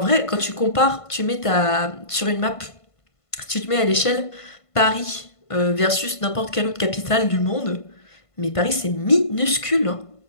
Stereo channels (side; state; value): right; late; 1.5 ms